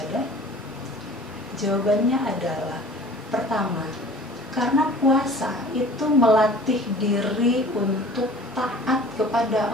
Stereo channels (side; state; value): both; normal; correlation 0.46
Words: Jawabannya adalah, pertama, karena puasa itu melatih diri untuk taat kepada